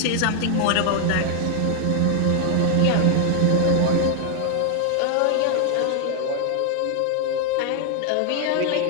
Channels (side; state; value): both; different; correlation 0.00